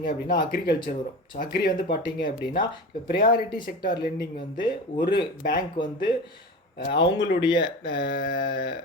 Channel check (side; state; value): both; normal; correlation 0.31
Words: அப்படின்னா அக்ரிகல்ச்சர் வரும். ஸோ அக்ரி வந்து பார்த்தீங்க அப்படின்னா இப்போ ப்ரையாரிட்டி செக்டார் லெண்டிங் வந்து ஒரு பேங்க் வந்து அவங்களுடைய